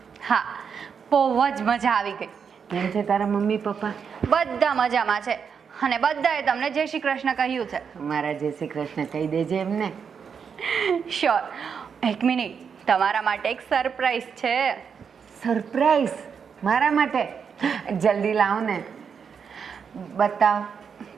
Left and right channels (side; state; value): left; quieter; 6.6 dB